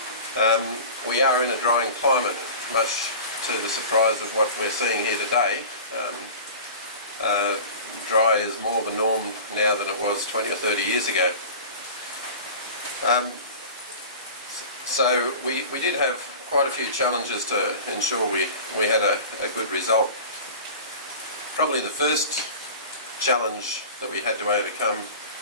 And, we are in a drying climate, much to the surprise of what we're seeing here today. Dry is more the norm now than it was 20 or 30 years ago. So we did have quite a few challenges to ensure we had a good result. Probably the first challenge that we had to overcome,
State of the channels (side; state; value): both; inverted; correlation -0.36